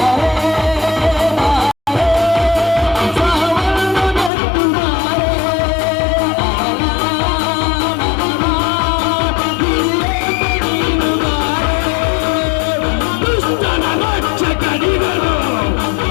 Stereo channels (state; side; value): drops out; right; at 4.3 s